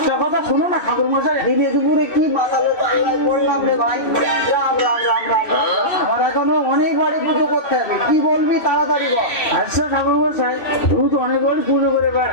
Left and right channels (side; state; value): right; late; 2.7 ms